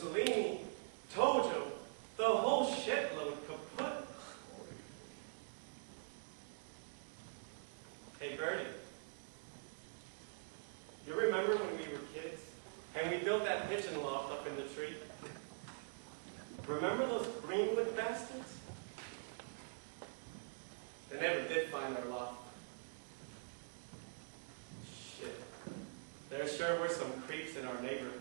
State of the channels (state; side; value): silent; left; digital silence